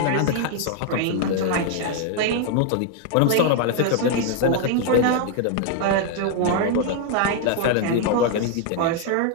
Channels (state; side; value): different; both; correlation 0.00